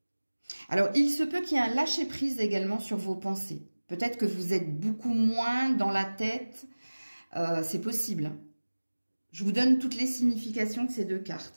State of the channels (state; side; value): inverted; both; correlation -1.00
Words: Alors, il se peut qu'il y ait un lâcher-prise également sur vos pensées. Peut-être que vous êtes beaucoup moins dans la tête. C'est possible. Je vous donne toutes les significations de ces deux